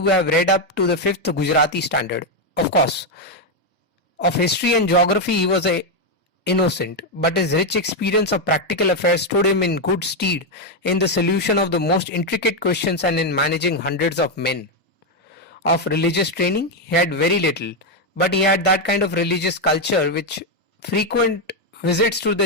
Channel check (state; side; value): normal; both; correlation 0.03